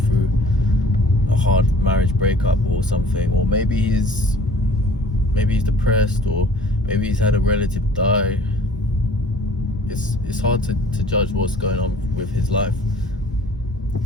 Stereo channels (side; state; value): both; normal; correlation 0.51